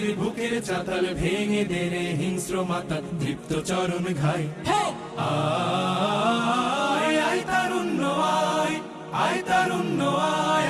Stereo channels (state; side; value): identical; both; correlation 1.00